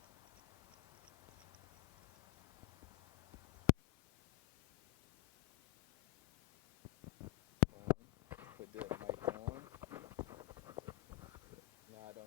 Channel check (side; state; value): right; quieter; 19.9 dB